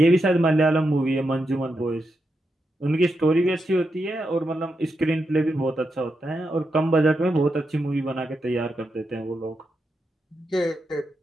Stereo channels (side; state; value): both; normal; correlation 0.86